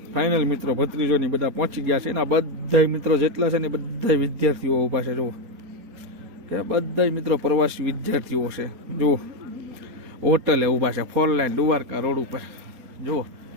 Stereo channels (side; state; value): left; late; 4.3 ms